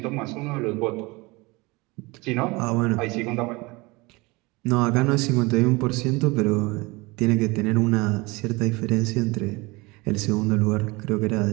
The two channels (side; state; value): left; quieter; 24.2 dB